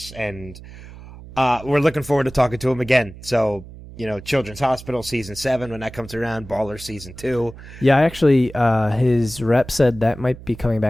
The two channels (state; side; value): noise; right; hum, 16 dB below the sound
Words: and we're looking forward to talking to him again. So, Children's Hospital Season 7, when that comes around, Ballers Season 2. Yeah, actually, his rep said that might be coming